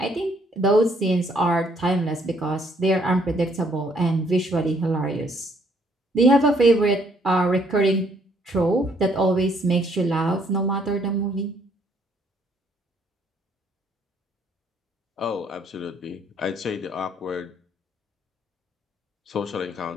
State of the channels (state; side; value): normal; both; correlation 0.66